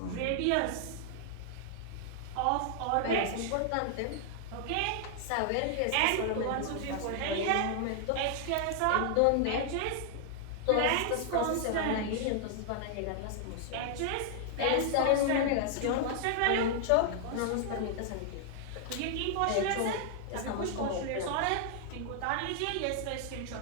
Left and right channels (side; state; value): both; different; correlation -0.01